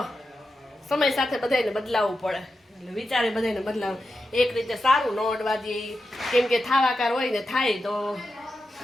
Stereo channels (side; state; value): both; normal; correlation 0.89